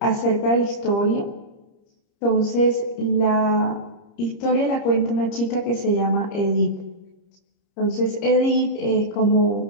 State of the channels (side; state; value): right; late; 30 ms